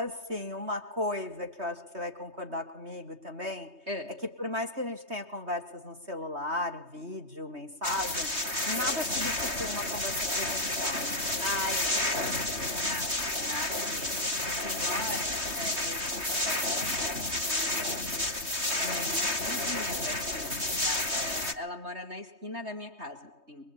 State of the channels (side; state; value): left; late; 3.2 ms